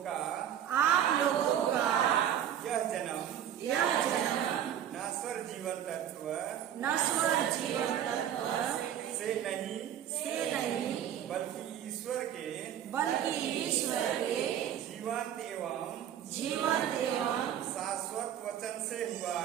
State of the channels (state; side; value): quieter; left; 10.1 dB